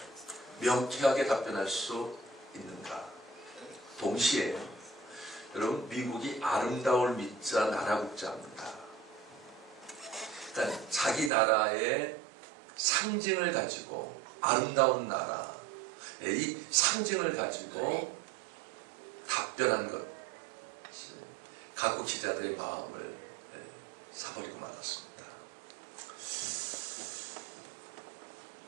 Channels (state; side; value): drops out; left; at 11.3 s